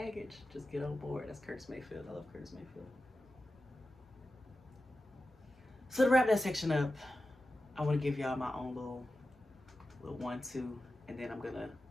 Just get on board. That's Curtis Mayfield. I love Curtis Mayfield. So to wrap that section up, I want to give y'all my own little 1-2, and then I'm gonna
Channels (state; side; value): normal; both; correlation 0.93